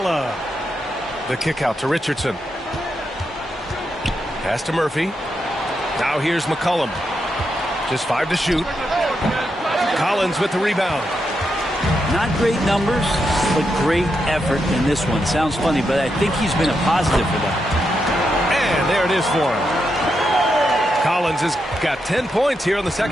The kick out to Richardson. Pass to Murphy. Now here's McCollum. Just 5 to shoot. Collins with the rebound. Not great numbers, but great effort in this one. Sounds funny, but I think he's been a positive for them. And there it is for him. Collins has got 10 points here in the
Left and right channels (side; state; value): both; normal; correlation 0.84